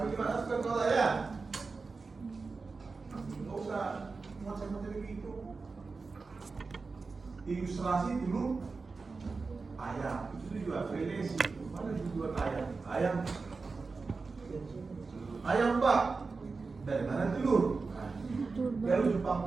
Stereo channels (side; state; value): left; quieter; 4.3 dB